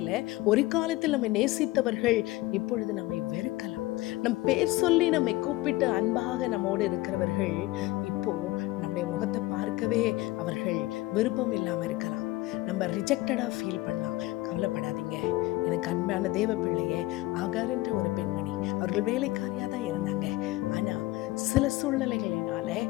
ஒரு காலத்தில் நம்மை நேசித்தவர்கள் இப்பொழுது நம்மை வெறுக்கலாம். நம் பேர் சொல்லி நம்மை கூப்பிட்டு அன்பாக நம்மோடு இருக்கிறவர்கள் இப்போ நம்முடைய முகத்தை பார்க்கவே அவர்கள் விருப்பம் இல்லாம இருக்கலாம். நம்ம ரிஜெக்டடா ஃபீல் பண்ணலாம். கவலைப்படாதீங்க. எனக்கு அன்பான தேவ பிள்ளையே, ஆகார் என்ற ஒரு பெண்மணி, அவர்கள் வேலைக்காரியா தான் இருந்தாங்க. ஆனா சில சூழ்நிலைகளினால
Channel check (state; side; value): quieter; right; 18.9 dB